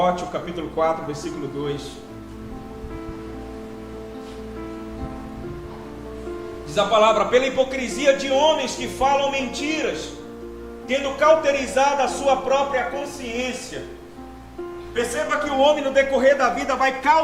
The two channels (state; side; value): identical; both; correlation 1.00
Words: capítulo 4, versículo 2. Diz a palavra: pela hipocrisia de homens que falam mentiras, tendo cauterizado a sua própria consciência. Perceba que o homem no decorrer da vida vai